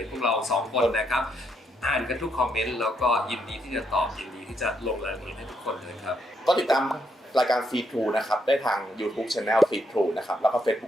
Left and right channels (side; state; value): both; normal; correlation 0.76